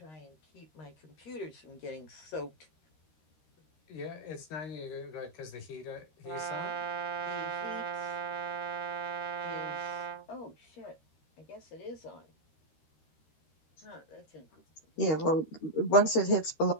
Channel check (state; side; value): late; right; 13 ms